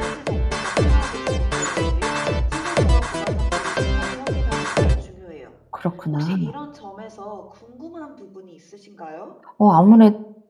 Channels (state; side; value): identical; both; correlation 1.00